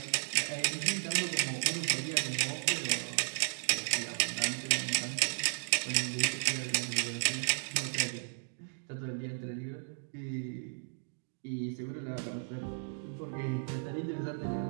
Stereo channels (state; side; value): silent; left; digital silence